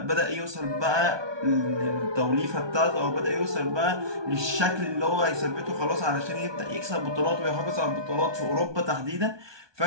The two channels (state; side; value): late; left; 1.2 ms